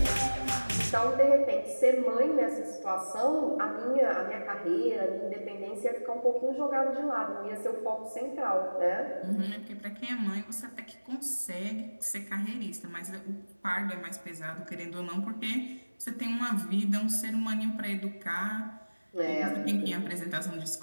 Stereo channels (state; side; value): inverted; both; correlation -1.00